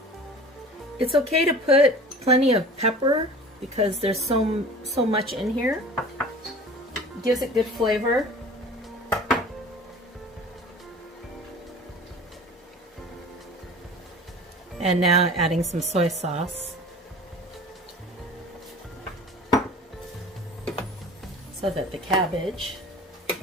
It's okay to put plenty of pepper because there's so much in here. It gives it good flavor. And now adding some soy sauce. So that the cabbage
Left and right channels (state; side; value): normal; both; correlation 0.41